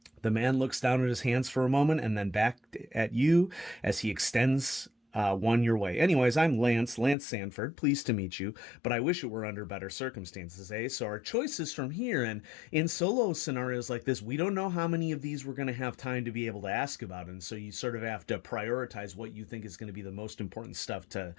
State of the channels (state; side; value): drops out; right; at 7.2 s